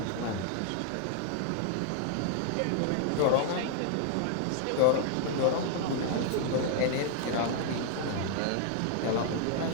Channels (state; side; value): different; both; correlation 0.00